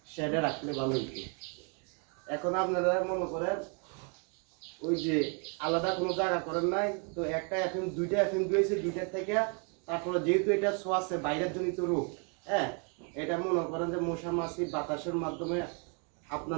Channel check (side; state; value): left; quieter; 37.7 dB